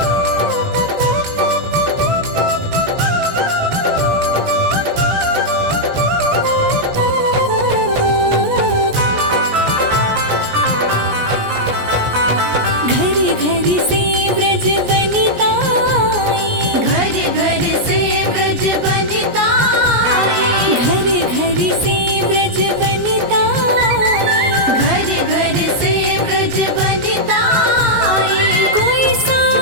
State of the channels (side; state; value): left; late; 17 ms